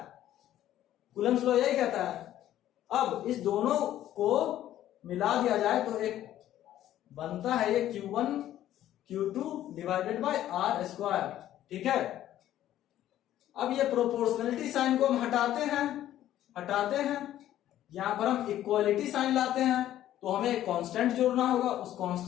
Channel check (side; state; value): right; quieter; 12.6 dB